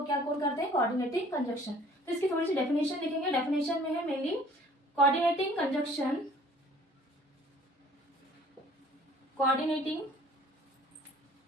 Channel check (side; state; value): both; normal; correlation 0.53